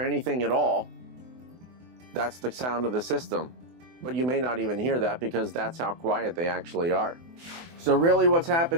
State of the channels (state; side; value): late; left; 24 ms